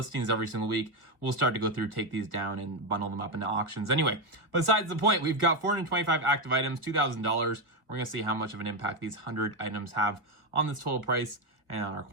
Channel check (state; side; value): late; left; 1.7 ms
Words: every single week, we'll start to go through, take these down, and bundle them up into auctions. Anyway, besides the point, we've got 425 active items, $2,000. We're gonna see how much of an impact these 100 items have on this total price and on our